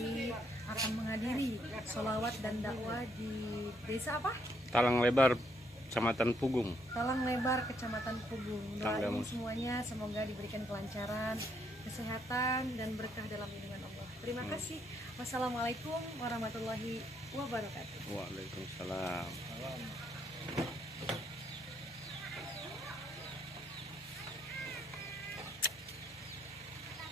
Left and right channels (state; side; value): normal; both; correlation 0.72